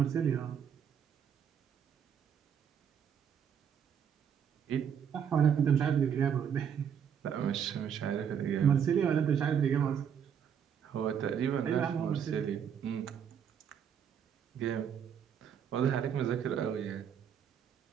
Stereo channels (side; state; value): left; quieter; 8.1 dB